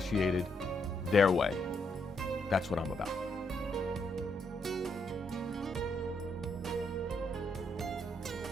their way. That's what I'm about.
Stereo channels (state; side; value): normal; both; correlation 0.76